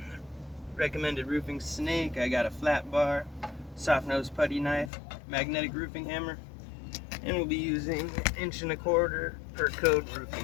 recommended roofing snake, I got a flat bar, soft nose putty knife, magnetic roofing hammer, and we'll be using 1.25" per code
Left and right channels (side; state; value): right; drops out; at 4.9 s